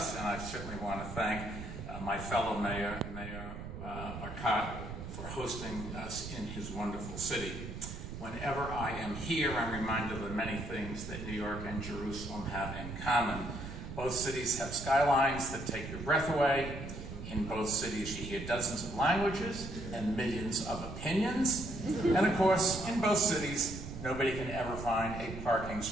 and I certainly want to thank my fellow mayor, Mayor Marcotte, for hosting us in his wonderful city. Whenever I am here, I'm reminded of the many things that New York and Jerusalem have in common. Both cities have skylines that take your breath away. In both cities, you hear dozens of languages and millions of opinions. And of course, in both cities, nobody can ever find a parking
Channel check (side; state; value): right; noise; rumble, 9 dB below the sound